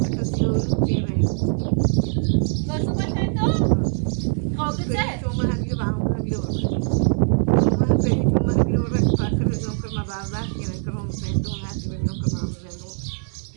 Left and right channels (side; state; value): left; silent; 60 dB below the other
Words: که سیارو کنه گفتو بکنه تو؟ قابطه؟ تو من همیو با هم بیرون من پیش تو من همیو رک پاکر دو کرم بربخت کنه کرم زندون هستی بگم کرم زندون